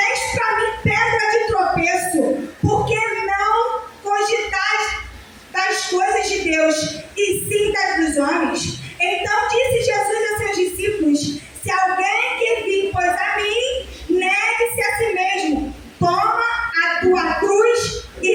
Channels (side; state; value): both; identical; correlation 1.00